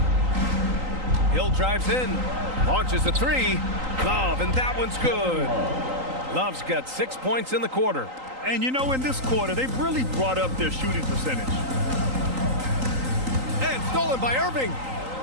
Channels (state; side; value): late; left; 3.9 ms